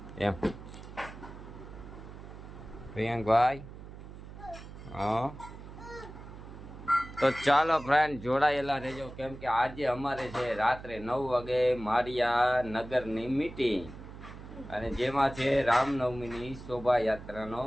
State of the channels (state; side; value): noise; right; hum, 14 dB below the sound